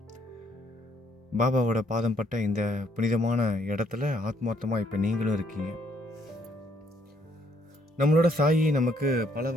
பாபாவோட பாதம் பட்ட இந்த புனிதமான இடத்துல ஆத்மார்த்தமாக இப்போ நீங்களும் இருக்கீங்க. நம்மளோட சாயி நமக்கு பல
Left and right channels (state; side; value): normal; both; correlation 0.68